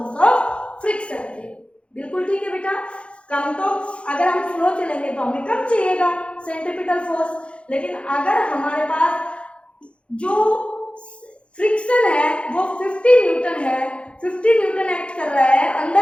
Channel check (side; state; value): right; late; 0.059 ms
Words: ऑफ फ्रिक्शन के। बिल्कुल ठीक है बेटा। कम तो अगर हम स्लो चलेंगे तो हमें कम चाहिएगा सेंट्रीपिटल फोर्स, लेकिन अगर हमारे पास जो फ्रिक्शन है वो 50 न्यूटन है, 50 न्यूटन एक्ट कर रहा है